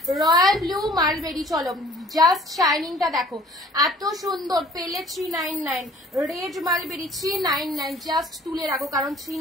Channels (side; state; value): both; normal; correlation 0.54